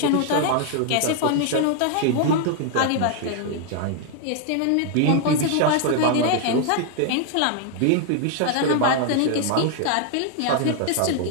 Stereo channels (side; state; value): both; different; correlation 0.00